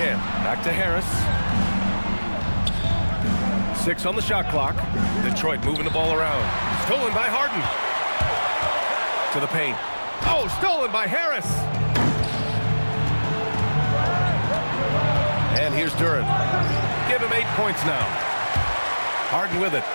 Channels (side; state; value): both; inverted; correlation -1.00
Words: Back to Harris. 6 on the shot clock. Detroit moving the ball around. Stolen by Harden. To the paint. Oh, stolen by Harris. And here's Duren. Give him 8 points now. Harden with it.